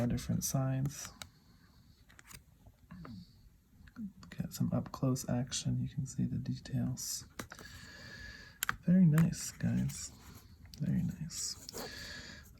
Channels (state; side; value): identical; both; correlation 1.00